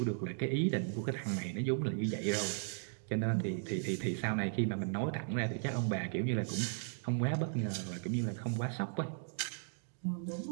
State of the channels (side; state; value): left; silent; digital silence